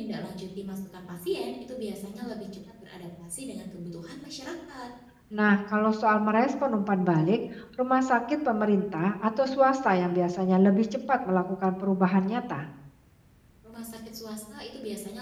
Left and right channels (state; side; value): identical; both; correlation 1.00